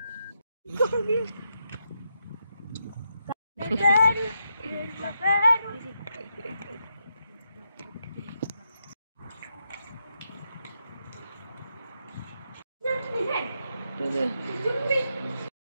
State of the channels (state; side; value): inverted; both; correlation -0.83